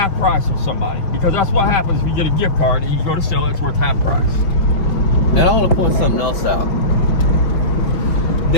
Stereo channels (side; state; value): right; late; 5.5 ms